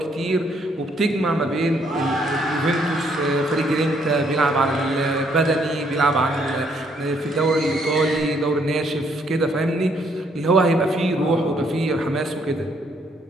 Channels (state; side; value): normal; both; correlation 0.69